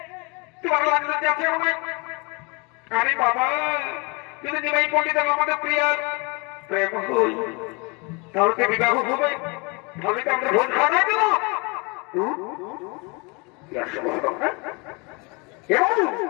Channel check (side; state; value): right; quieter; 29.8 dB